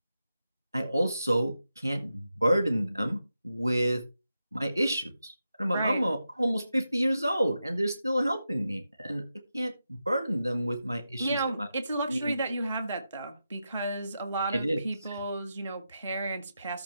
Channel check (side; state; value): both; inverted; correlation -0.88